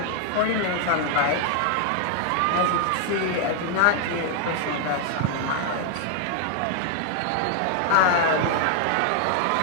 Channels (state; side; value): different; both; correlation 0.00